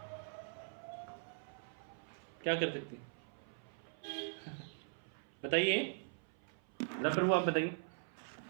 क्या कर सकते हैं? बताइए प्रभु आप बताइए।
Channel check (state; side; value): silent; left; 50 dB below the other